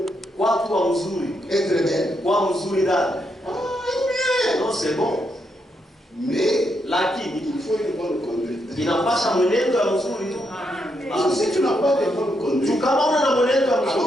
Watu wa mzuri, être belle. kwa mzuri dada. Ah, bien. Non, c'est bon. Mais Lakini il faut une bonne conduite. inapasha mwenendo ya mzuri tu. Parce que si tu n'as pas de bonne Tu conduite, kama una na mwenendo ya alors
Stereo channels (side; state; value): both; normal; correlation 0.79